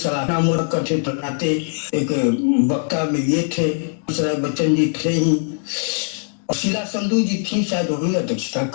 करते बनाते एक वक्ता में ये थे, बच्चन जी थे ही, और शीला संधू जी थी, शायद वही अध्यक्षता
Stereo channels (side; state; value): right; silent; 65 dB below the other